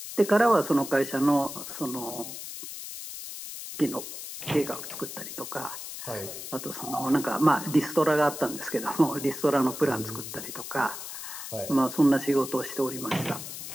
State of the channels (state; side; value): noise; left; hiss, 9 dB below the sound